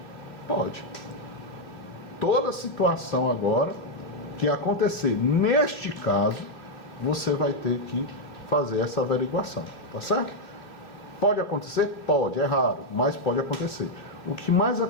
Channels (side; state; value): right; late; 2.8 ms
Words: Pode. Toda situação agora que acontecer neste caso, você vai ter que fazer essa averiguação. Tá certo? Pode acontecer? Pode. É raro, mas pode acontecer. O que mais